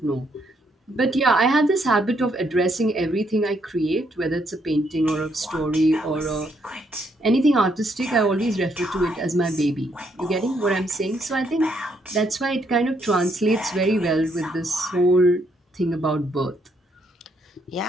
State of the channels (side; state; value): both; normal; correlation 0.73